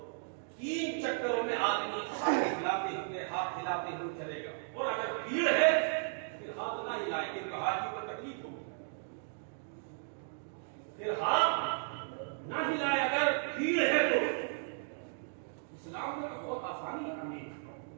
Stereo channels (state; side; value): silent; left; digital silence